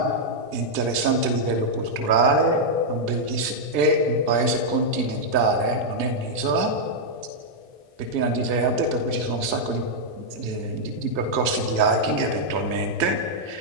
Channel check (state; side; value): late; left; 1.6 ms